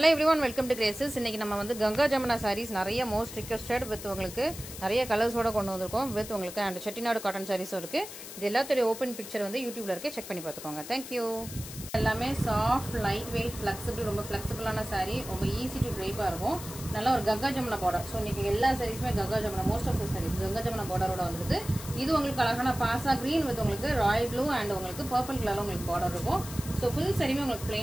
everyone, welcome to Graces. இன்னைக்கு நம்ம வந்து கங்கா ஜமுனா sarees நிறைய most requested with உங்களுக்கு நிறைய கலர்ஸ் ஓட கொண்டு வந்திருக்கோம் with உங்களுக்கு and செட்டிநாடு காட்டன் sarees இருக்கு. இது எல்லாத்தோட ஓபன் பிக்சர் வந்து YouTubeல இருக்கு, செக் பண்ணி பாத்துக்கோங்க. Thank you. எல்லாமே சாஃப்ட் லைட் வெயிட் ஃபிளெக்சிபிள் ரொம்ப ஃபிளெக்சிபிளான saree, ரொம்ப ஈஸி டு ட்ரைப்பா இருக்கும். நல்ல ஒரு கங்கா ஜமுனா border. சோ இன்னைக்கு எல்லா sareesமே Ganga Jamuna, most of the sarees Ganga Jamuna borderோட வந்திருக்கு. இது உங்களுக்கு அழகான பாசா green with உங்களுக்கு ராயல் ப்ளூ and உங்களுக்கு purple கலர்ல உங்களுக்கு border இருக்கும். சோ ஃபுல் sareeமே உங்களுக்கு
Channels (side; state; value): left; noise; hiss, 12 dB below the sound